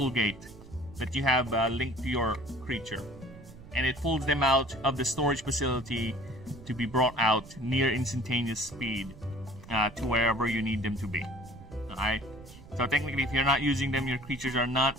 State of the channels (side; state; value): right; noise; rumble, 18 dB below the sound